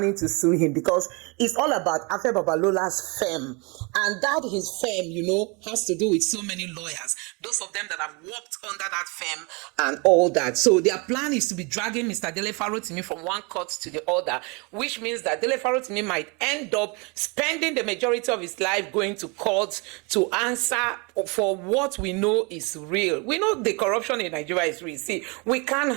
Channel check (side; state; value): left; quieter; 30.1 dB